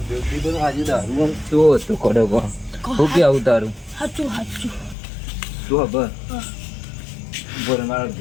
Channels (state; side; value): drops out; right; at 5.0 s